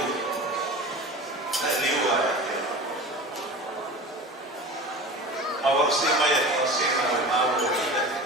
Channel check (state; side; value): normal; both; correlation 0.35